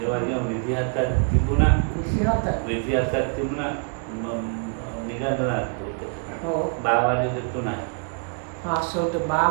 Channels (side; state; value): left; quieter; 39.8 dB